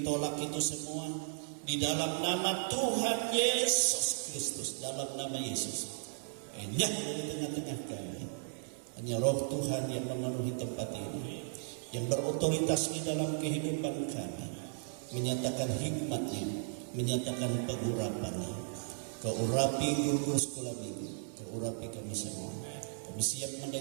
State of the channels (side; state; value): left; silent; 54 dB below the other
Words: tolak itu semua di dalam nama Tuhan Yesus Kristus. Dalam nama Yesus, enyah dari tengah-tengah kami. Hanya Roh Tuhan yang memenuhi tempat ini, yang berotoritas di dalam kehidupan kami, menyatakan hikmat-Nya, menyatakan pengurapan-Nya. Kau urapi guru sekolah minggu, kau urapi kami semua. Kami siap